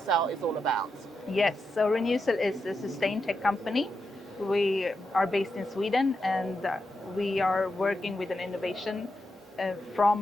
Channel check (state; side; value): normal; both; correlation 0.86